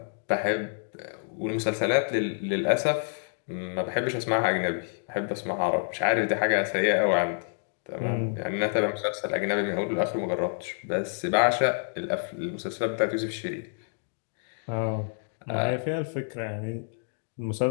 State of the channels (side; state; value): right; silent; digital silence